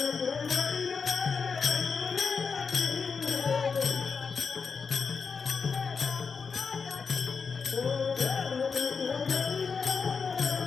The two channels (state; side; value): quieter; right; 5.4 dB